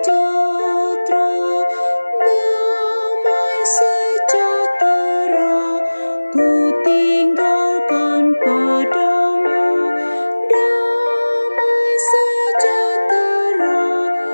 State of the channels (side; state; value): both; inverted; correlation -1.00